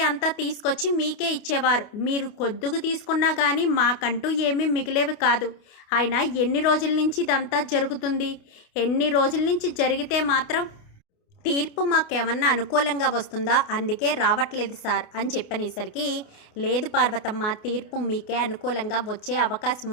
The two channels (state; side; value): late; right; 28 ms